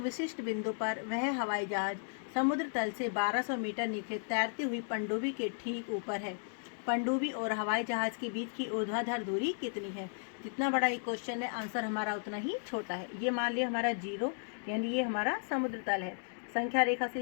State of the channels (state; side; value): silent; right; digital silence